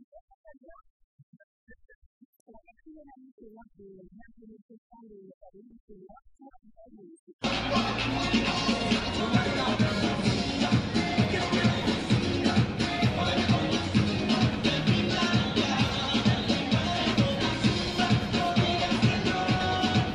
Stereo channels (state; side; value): identical; both; correlation 1.00